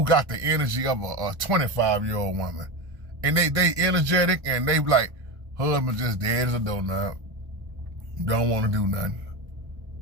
got the energy of a 25-year-old woman. And they energetic and they like, husband just dead as a doorknob. Don't want to do nothing.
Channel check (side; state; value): left; late; 1.1 ms